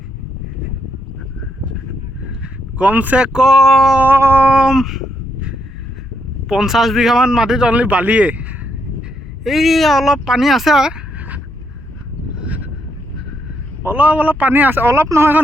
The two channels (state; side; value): normal; both; correlation 0.77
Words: কমসে কম 50 বিঘামান মাটিত অনলি বালিয়ে এই অলপ পানী আছে অলপ পানী আছে অলপ নহয়